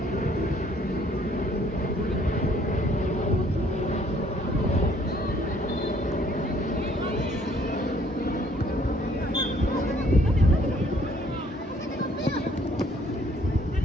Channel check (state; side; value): normal; both; correlation 0.62